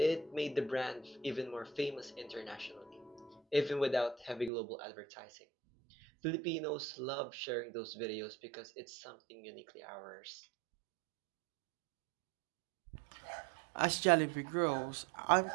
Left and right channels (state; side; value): drops out; left; at 4.5 s